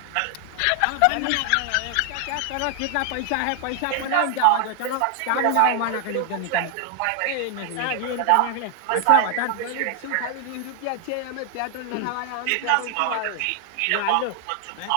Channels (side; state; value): both; different; correlation 0.00